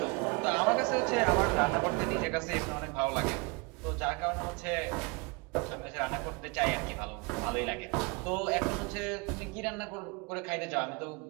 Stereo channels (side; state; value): left; quieter; 29.6 dB